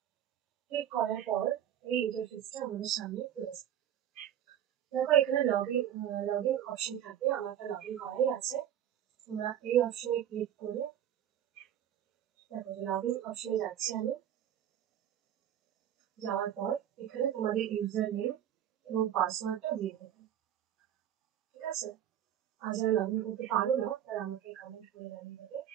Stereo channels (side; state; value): left; quieter; 10.5 dB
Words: ক্লিক করার পর এই ইন্টারফেসটা আমাদের সামনে রয়েছে। দেখো এখানে লগ ইন অপশন থাকবে, আমারটা লগ ইন করাই আছে। তোমরা এই অপশনে ক্লিক করে দেখো যে লগ ইন অপশনে যাচ্ছি আমি। যাওয়ার পর এখানে তোমাদের ইউজার নেম এবং পাসওয়ার্ডটা দিয়ে দেবে, ঠিক আছে? আর যারা লগ ইন করতে পারো না তারা আমাকে কমেন্ট করে জানিয়ে দেবে,